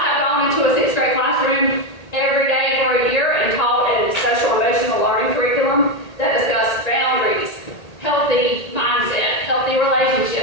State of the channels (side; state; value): right; late; 1.8 ms